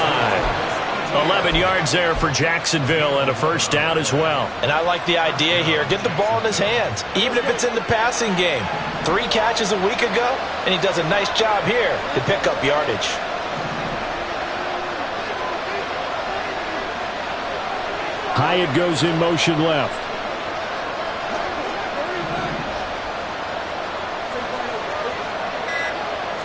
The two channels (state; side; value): identical; both; correlation 1.00